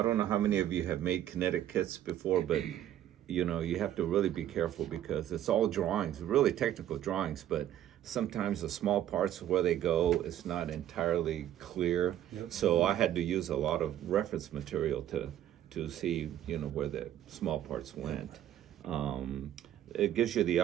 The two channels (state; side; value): quieter; left; 11.8 dB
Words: don't know how many of you have made Kinetic kits before, but you know, you have to really be careful because it's all drawings, really technical drawings, but sometimes the small parts where they go is not entirely clear. Yep. So I had to use a lot of reference material to see, you know, where the small parts went. It gives you the